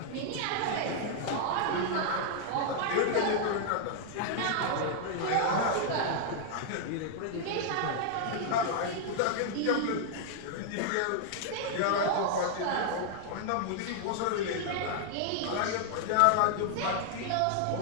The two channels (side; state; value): both; different; correlation -0.01